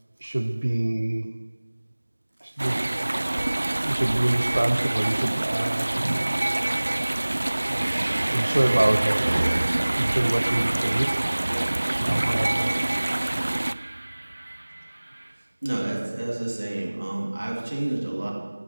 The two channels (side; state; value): both; inverted; correlation -1.00